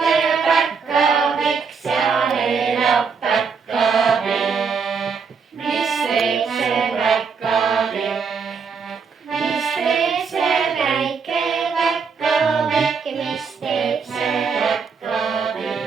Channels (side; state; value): left; quieter; 5.6 dB